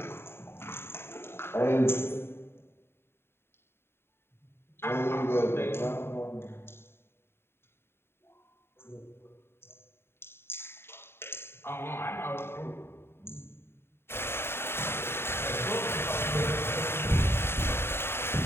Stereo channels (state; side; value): late; right; 0.11 ms